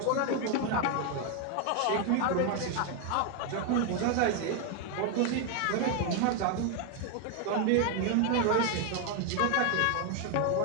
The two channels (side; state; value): both; different; correlation 0.01